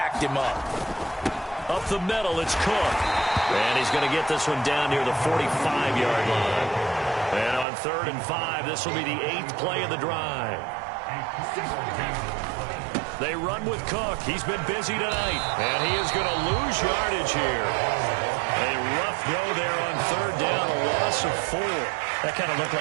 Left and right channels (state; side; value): drops out; left; at 7.7 s